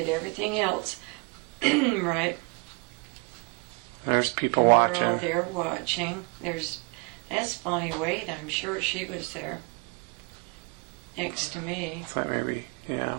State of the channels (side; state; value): left; quieter; 31.0 dB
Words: everything else right. There's people watching. We're all there watching. That's Bonnie Wade. I'm sure she was there next to me. That maybe,